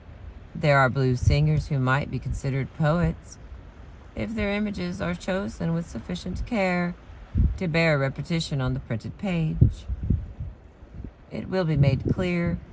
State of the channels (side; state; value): both; identical; correlation 1.00